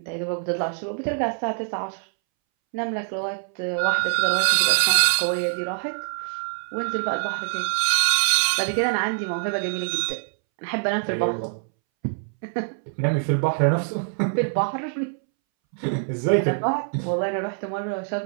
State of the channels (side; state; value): left; silent; 62 dB below the other